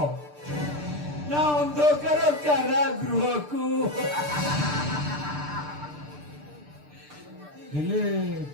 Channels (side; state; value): left; late; 6.7 ms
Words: ନା ଅନ୍ଧକାର କାରାଗୃହକୁ? ହେଲେ